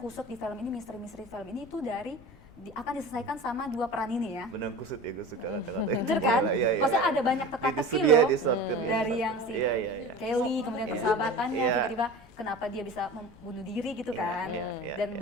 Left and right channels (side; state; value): left; noise; rumble, 23 dB below the sound